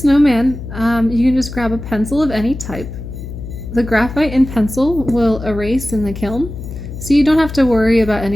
you can just grab a pencil of any type. The graphite and pencil will erase in the kiln, so you don't have to worry about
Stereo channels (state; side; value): noise; left; hum, 10 dB below the sound